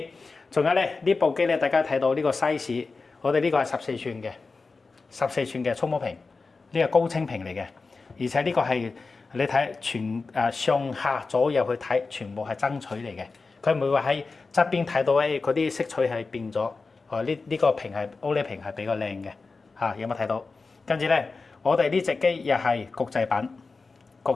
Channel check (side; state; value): right; quieter; 4.1 dB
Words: 仲有咧，呢部機咧，大家睇到呢個 size， 我哋呢個係14寸嘅14寸嘅觸摸屏，呢個高清屏嚟嘅，而且呢個係你睇上下左右去睇，全部係爭取嚟嘅，佢唔會話喺側邊睇到嗰啲色彩係變咗，呢個屏係 OLED 屏係比較靚嘅，嚇有冇睇到？跟住咧，我哋呢隻機又係國際版，